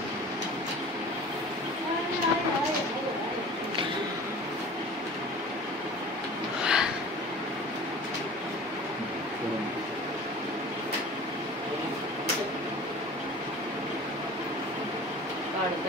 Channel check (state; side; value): normal; both; correlation 0.41